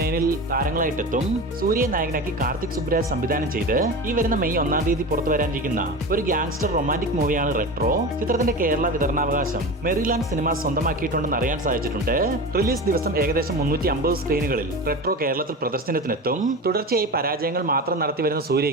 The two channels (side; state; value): both; normal; correlation 0.28